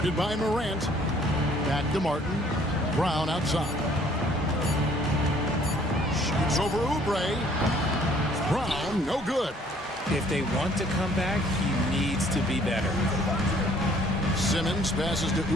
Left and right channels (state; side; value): normal; both; correlation 0.59